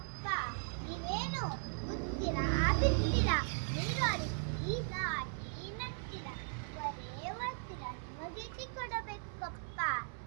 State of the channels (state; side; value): silent; left; 52 dB below the other